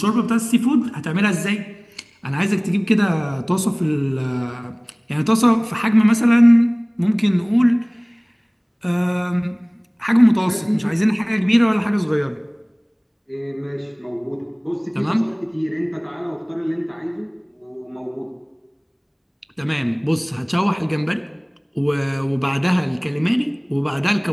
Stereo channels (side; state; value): both; identical; correlation 1.00